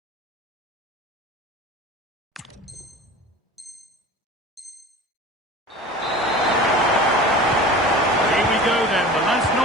Here we go then, the last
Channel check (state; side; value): normal; both; correlation 0.38